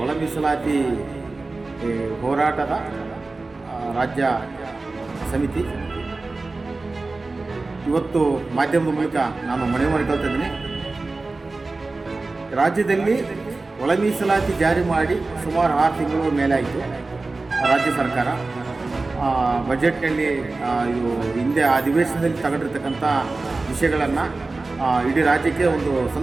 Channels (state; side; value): quieter; left; 3.5 dB